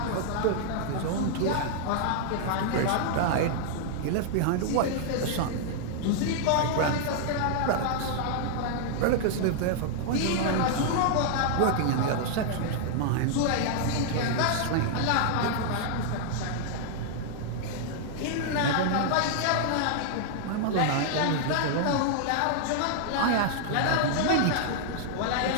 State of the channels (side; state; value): both; different; correlation -0.01